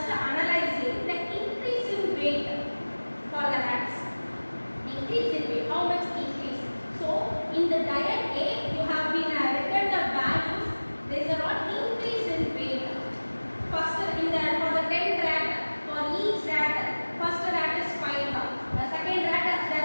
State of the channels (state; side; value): inverted; both; correlation -1.00